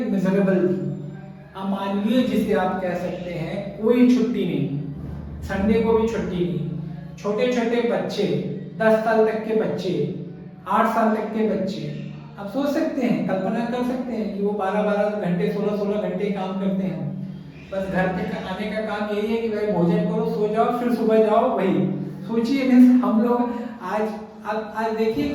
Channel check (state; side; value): identical; both; correlation 1.00